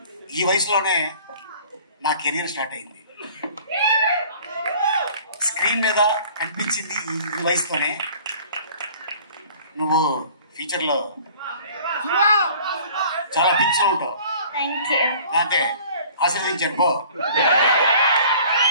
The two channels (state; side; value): inverted; both; correlation -0.50